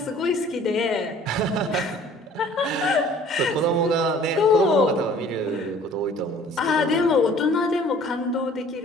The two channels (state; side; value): normal; both; correlation 0.52